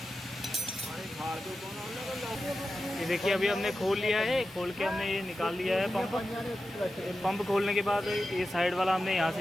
ये देखिए अभी हमने खोल लिया है, खोल के हमने ये निकाल लिया है पंप खोलने के बाद ये साइड वाला हमने यहाँ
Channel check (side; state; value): both; normal; correlation 0.92